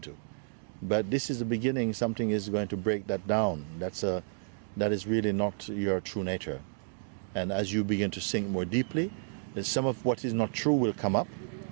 But this is the beginning. Something is going to break that down. That is really not your true nature. And as you begin to sink more deeply, then some of what is not true will come up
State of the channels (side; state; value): left; silent; digital silence